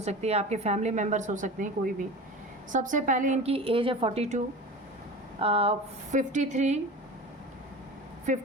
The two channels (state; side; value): normal; both; correlation 0.33